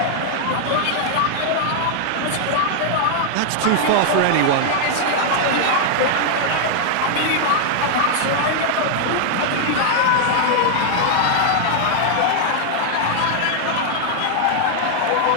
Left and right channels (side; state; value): both; different; correlation 0.00